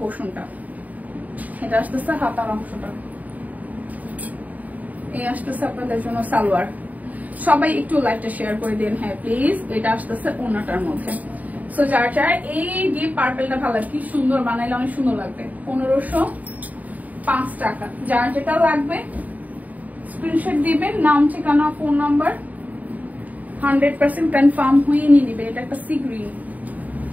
এটা আসতেছে হাতার অংশটা, এই আসতেছে আপনাদের জন্য সালোয়ার। সবাই একটু লাইভটা শেয়ার করে দিন, হ্যাঁ প্লিজ। এটা আসতেছে ওড়নাটার মধ্যে। সো যার যার এই ডিপ পার্পলটা ভালো লাগে, কি সুন্দর বানাইলে অনেক সুন্দর লাগবে। 1505 টাকা। যার যেটা লাগবে স্ক্রিনশট দিবেন, নাম ঠিকানা ফোন নাম্বার 100% কনফার্ম হয়ে নিয়ে নিবে। এটা একটা সি গ্রিন,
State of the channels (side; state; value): left; late; 0.075 ms